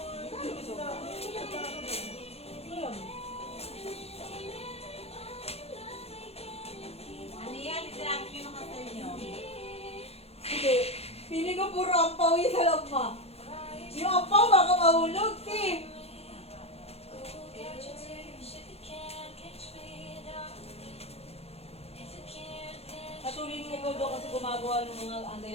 Ano yan? Itirapin nyo ng kasal nyo. Hindi. Pili ko puro ampaw yung sa loob mo. Yung ampaw baka mahulog, Tim. Patuloy niya ikaw doon kasi gumagawa ng mga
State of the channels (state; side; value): late; right; 0.29 ms